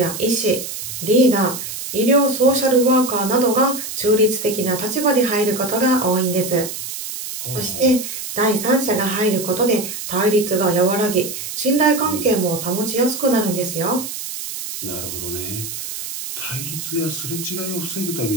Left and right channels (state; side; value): noise; right; hiss, 7 dB below the sound